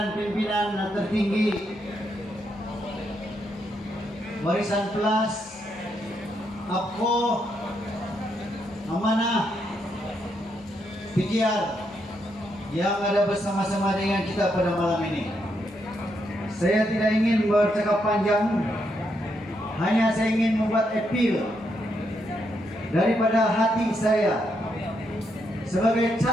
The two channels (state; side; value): normal; both; correlation 0.79